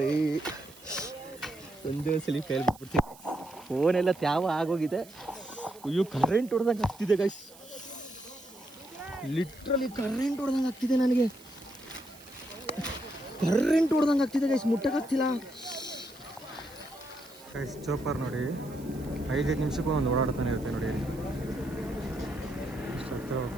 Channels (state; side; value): noise; right; hiss, 22 dB below the sound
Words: ಒಂದೇ ಸಲ ಫೇಲ್ ಬಿಟ್ಬಿಡ್ತೀನಿ. ಫೋನೆಲ್ಲ ತ್ಯಾವ ಆಗೋಗಿದೆ. ಅಯ್ಯೋ, ಕರೆಂಟ್ ಹೊಡೆದಂಗೆ ಆಗ್ತಿದೆ ಗೈಸ್. ಲಿಟ್ರಲಿ ಕರೆಂಟ್ ಹೊಡೆದಂಗೆ ಆಗ್ತಿದೆ ನನಗೆ. ಕರೆಂಟ್ ಹೊಡೆದಂಗೆ ಆಗ್ತಿದೆ ಗೈಸ್, ಮುಟ್ಟಕ್ಕಾಗ್ತಿಲ್ಲ. ಗೈಸ್ ಚೋಪರ್ ನೋಡಿ 5 ನಿಮಿಷಕ್ಕೂ ಒಂದು ಓಡಾಡ್ತಾನೆ ಇರುತ್ತೆ ನೋಡಿ. ಅಷ್ಟು ಹತ್ರ